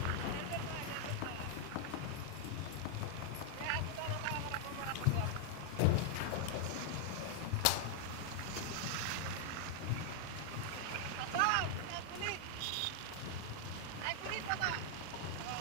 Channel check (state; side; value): different; both; correlation 0.00